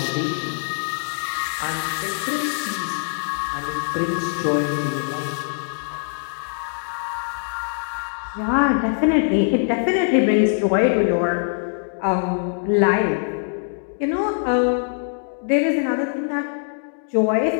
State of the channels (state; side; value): silent; right; digital silence